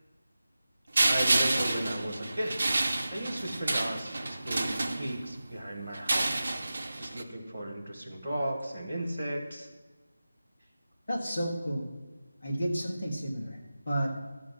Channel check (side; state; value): both; inverted; correlation -0.94